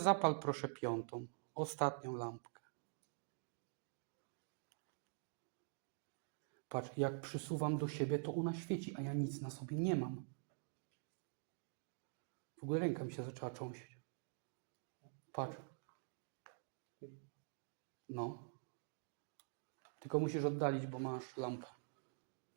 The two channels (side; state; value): left; silent; digital silence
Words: proszę piątą, ostatnią lampkę. Patrz, jak przysuwam do siebie, to ona świeci, a ja nic na sobie nie mam. W ogóle ręka mi się zaczęła trząść. Patrz. No. Tylko musisz oddalić, bo masz lampę.